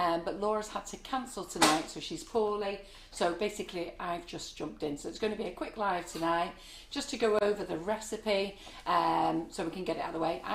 Laura's had to cancel tonight, so she's poorly. So basically, I've just jumped in. So it's going to be a quick live tonight, just to go over the recipe, so we can get it out of the way.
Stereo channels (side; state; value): both; identical; correlation 1.00